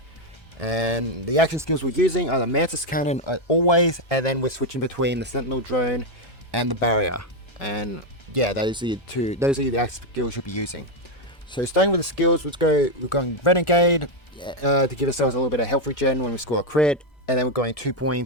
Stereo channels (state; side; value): late; right; 1.3 ms